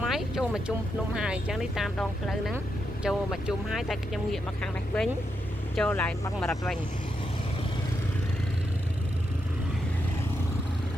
máy chôm mà chôm nôm hài chẳng đi tam đòn lơ nắng chô mà chôm hai tay trong nghiệm mà khang này vĩnh chô lại băng mà đặt vành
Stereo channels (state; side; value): normal; both; correlation 0.83